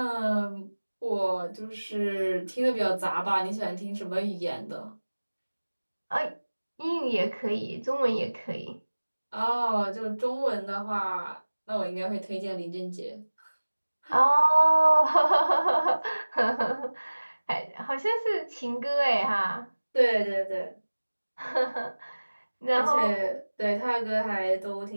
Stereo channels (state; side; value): inverted; both; correlation -1.00